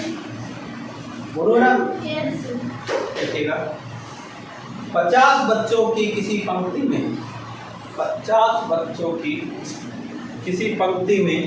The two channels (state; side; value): identical; both; correlation 1.00